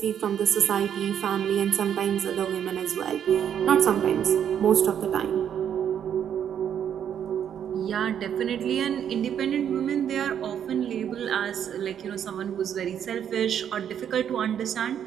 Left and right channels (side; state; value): left; quieter; 9.0 dB